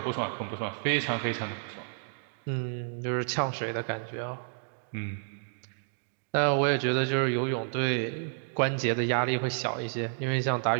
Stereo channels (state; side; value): silent; left; digital silence